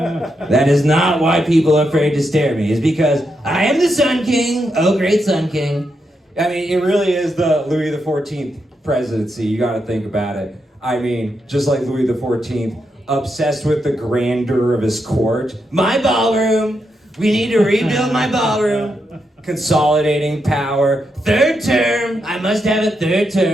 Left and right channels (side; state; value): both; normal; correlation 0.83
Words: That is not why people are afraid to stare at me. It's because I am the Sun King. Oh, great Sun King. I mean, it really is the Louis XIV presidency. You got to think about it. I mean, just like Louis XIV, obsessed with the grandeur of his court. My ballroom. We need to rebuild my ballroom. Consolidating power. Third term. I must have a third